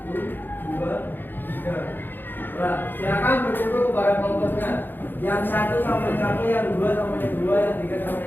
Silakan berkumpul kepada kelompoknya. Yang 1 sama yang 1, yang 2 sama yang 2, yang 3 sama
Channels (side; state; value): right; late; 0.094 ms